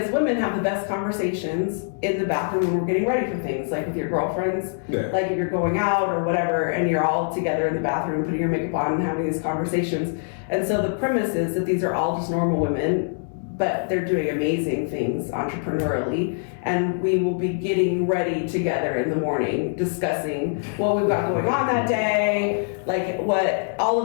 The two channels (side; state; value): right; silent; digital silence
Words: women have the best conversations in the bathroom when we're getting ready for things, like with your girlfriends, Yeah. like if you're going out or whatever, and you're all together in the bathroom putting your makeup on and having these conversations. And so the premise is that these are all just normal women, but they're doing amazing things entrepreneurially, and we will be getting ready together in the morning, discussing what we've got going on that day, like what all